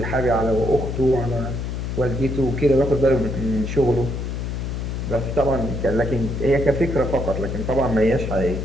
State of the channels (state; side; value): noise; left; hum, 4 dB below the sound